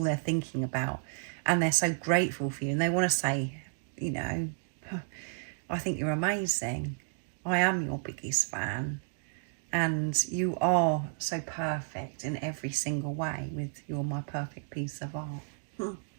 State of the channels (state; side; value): silent; left; digital silence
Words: they're thinking about, and they're so grateful for you, and they want to say, I think you're amazing. I am your biggest fan, and you are so perfect in every single way. You're my perfect piece of art. You're